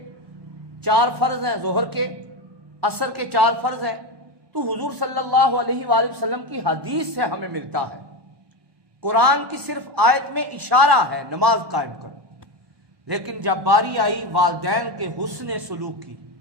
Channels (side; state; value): left; late; 1.2 ms